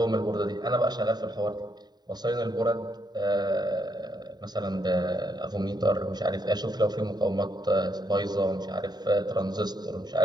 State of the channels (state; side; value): late; left; 0.20 ms